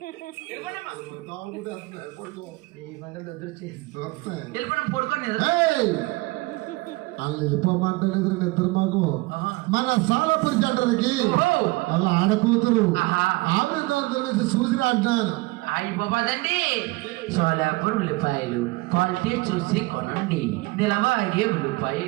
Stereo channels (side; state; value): left; quieter; 23.0 dB